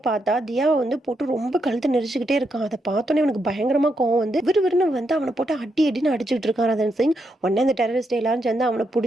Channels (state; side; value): normal; both; correlation 0.81